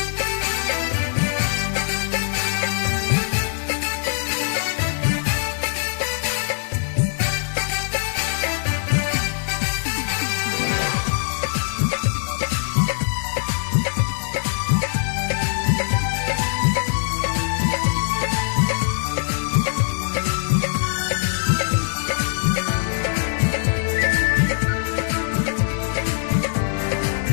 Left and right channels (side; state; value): right; silent; digital silence